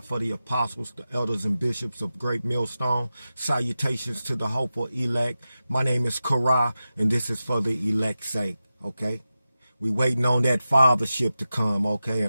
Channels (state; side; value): inverted; both; correlation -0.93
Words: the apostles, the elders, and bishops of Great Millstone. Salutations to the hopeful elect. My name is Korah, and this is for the elect's sake, okay? We waiting on that fathership to come, okay?